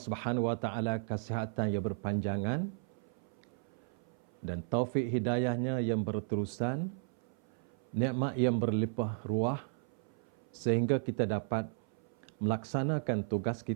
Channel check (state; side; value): silent; left; 55 dB below the other